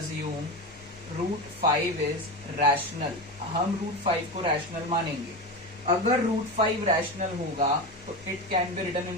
root 5 is rational. हम रूट 5 को रैशनल मानेंगे। अगर रूट 5 रैशनल होगा तो it can be written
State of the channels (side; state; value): both; normal; correlation 0.21